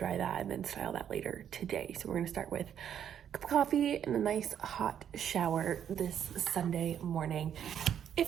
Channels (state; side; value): quieter; left; 9.2 dB